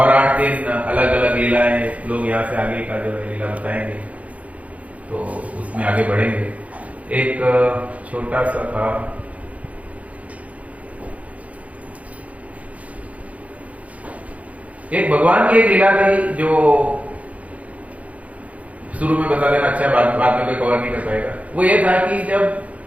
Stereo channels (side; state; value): left; late; 0.067 ms